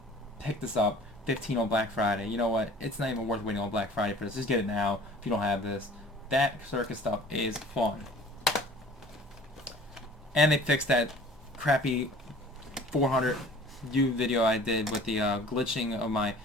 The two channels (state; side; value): normal; both; correlation 0.47